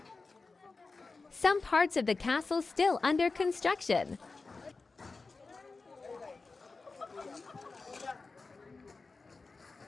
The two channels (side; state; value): right; quieter; 4.0 dB